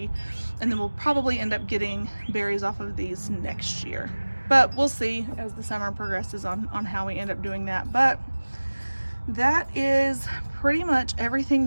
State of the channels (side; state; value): both; inverted; correlation -1.00